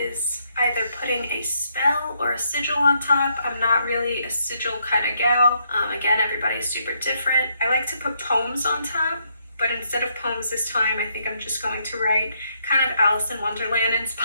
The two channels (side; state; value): both; inverted; correlation -0.74